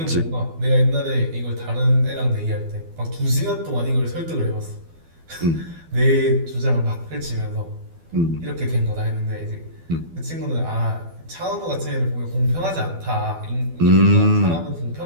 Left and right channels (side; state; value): left; late; 12 ms